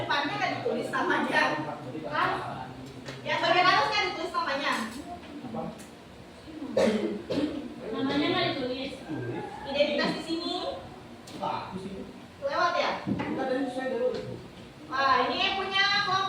kan ditulis namanya. Yang bagian atas kan ditulis namanya. Namanya nggak ditulis. Identitas di sini. Lewat ya? Nah, ini yang punya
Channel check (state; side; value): identical; both; correlation 1.00